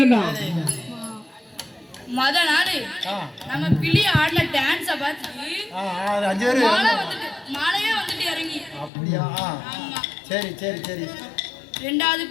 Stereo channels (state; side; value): drops out; right; at 8.9 s